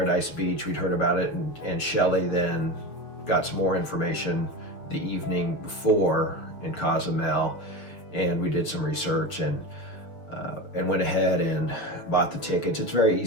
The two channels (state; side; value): late; right; 6.4 ms